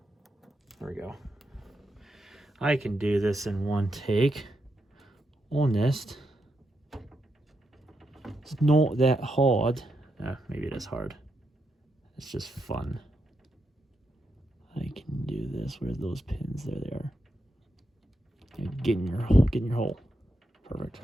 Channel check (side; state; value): both; normal; correlation 0.83